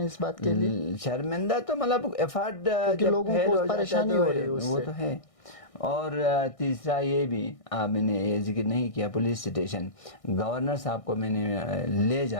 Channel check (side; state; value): right; late; 1.6 ms